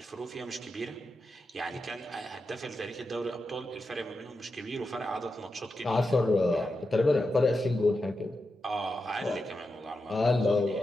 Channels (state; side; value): normal; both; correlation 0.89